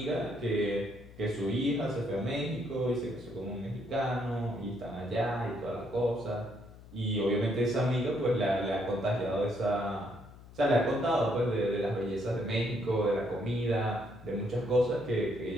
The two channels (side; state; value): left; noise; hum, 19 dB below the sound